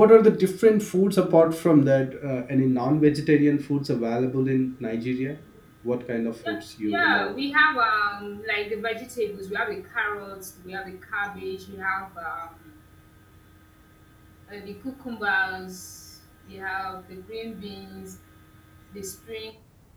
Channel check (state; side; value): identical; both; correlation 1.00